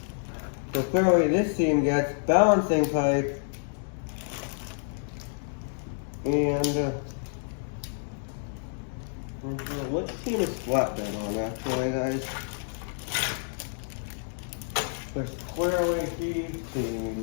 so clearly this team gets balancing pipe. And what team is flatbed on actually, guys? There's clearly these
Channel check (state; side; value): silent; right; digital silence